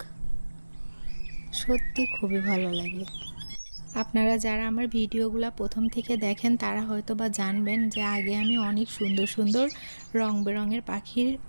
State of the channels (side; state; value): both; inverted; correlation -1.00